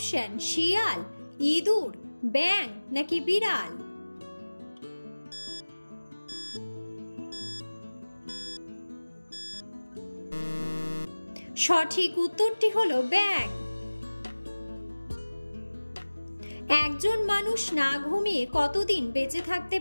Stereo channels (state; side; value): inverted; both; correlation -1.00